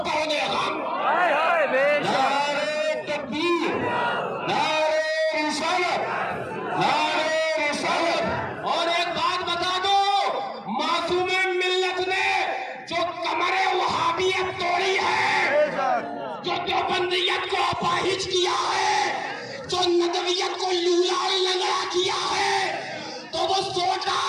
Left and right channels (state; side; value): identical; both; correlation 1.00